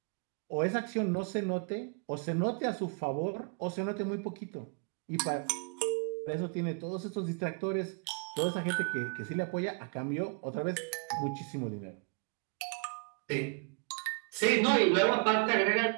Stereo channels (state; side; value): quieter; left; 36.4 dB